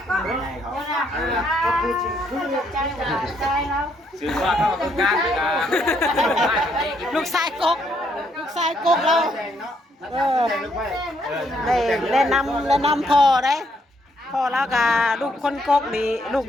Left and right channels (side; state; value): both; normal; correlation 0.72